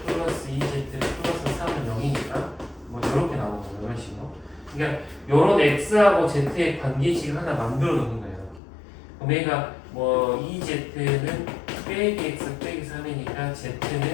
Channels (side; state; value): right; drops out; at 8.6 s